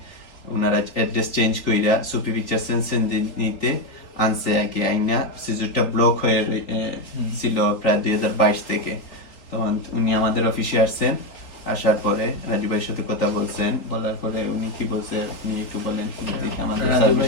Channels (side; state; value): right; late; 3.9 ms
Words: ওনারা অ্যাড্রেস চেঞ্জ কইরা সুপি পিকচার সেনসেনজেনিতে আনছে আগে আইনা সিজুরটা ব্লক হয়ে ছিল প্রায় 2022 থেকে। তখন উনি আমাদের অফিসে আসছেন, আসার পরে রাজু ভাইয়ের সাথে কথা বলছেন, বলার পরে উনি কি বলছে আপনি একটু বলেন আমাদের রাজু ভাই